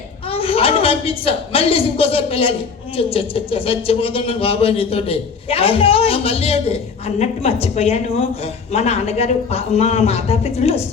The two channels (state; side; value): quieter; right; 5.4 dB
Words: అది పంపించా. మళ్ళీ ఇంకోసారి పిల్లలు చచ్చిపోతున్నాను బాబా నీతోటి. మళ్ళీ ఏంటి అన్నట్టు మర్చిపోయాను. మా నాన్నగారు మా మాతాపితృలు